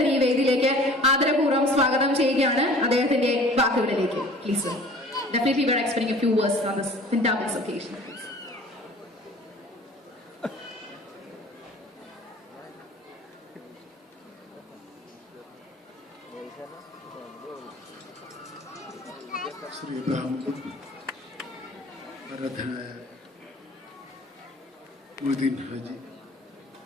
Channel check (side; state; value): both; normal; correlation 0.47